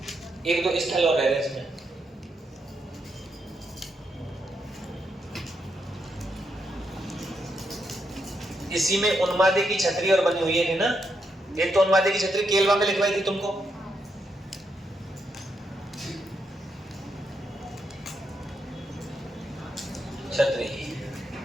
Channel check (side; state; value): both; normal; correlation 0.81